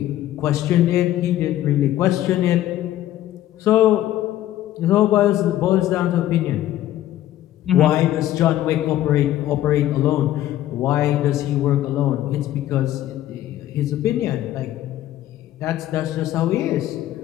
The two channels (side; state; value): right; quieter; 13.3 dB